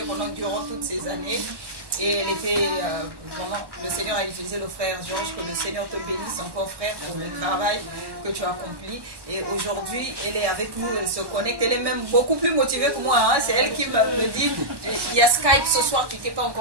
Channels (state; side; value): late; left; 1.1 ms